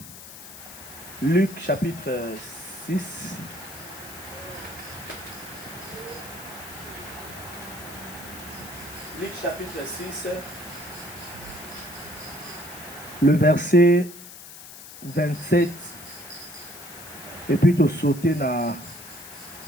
Luc chapitre 6. Luc chapitre 6. Le verset 27. Et puis tu sauter dans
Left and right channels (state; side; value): noise; left; hiss, 15 dB below the sound